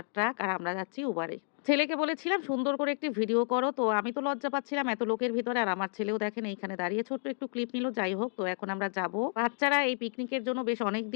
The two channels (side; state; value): right; silent; 57 dB below the other